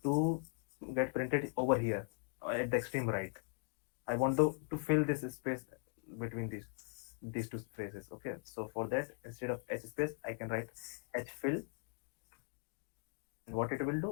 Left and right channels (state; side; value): silent; right; 51 dB below the other